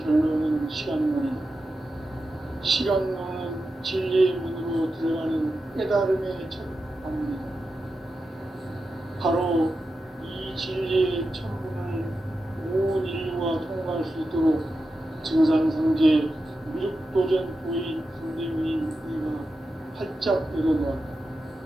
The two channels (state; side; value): normal; both; correlation 0.90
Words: 결론은 시간론이다. 시간론은 진리의 문으로 들어가는 깨달음의 첫 방문이다. 바로 이 진리의 천문을 온 인류가 통과할 수 있도록 증산성제 미륵도전 도인 강대문인 우리가 활짝 열어놓았다.